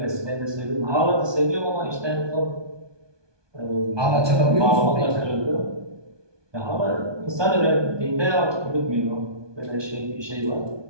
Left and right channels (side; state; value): left; late; 1.2 ms